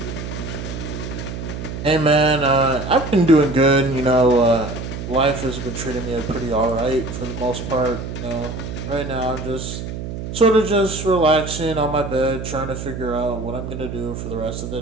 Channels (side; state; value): right; noise; hum, 7 dB below the sound